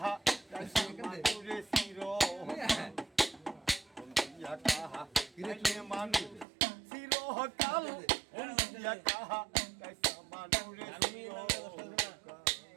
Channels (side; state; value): left; drops out; at 6.5 s